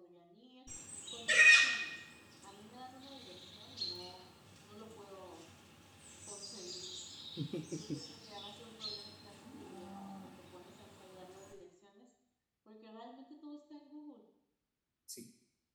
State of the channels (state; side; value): identical; both; correlation 1.00